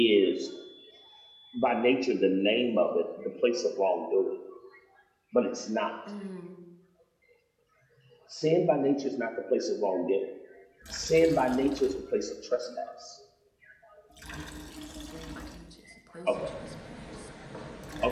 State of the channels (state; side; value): identical; both; correlation 1.00